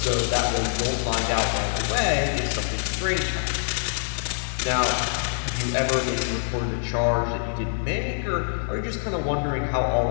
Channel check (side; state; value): right; silent; digital silence